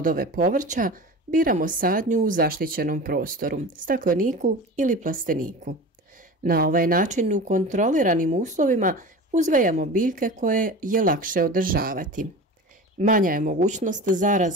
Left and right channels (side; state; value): both; normal; correlation 0.33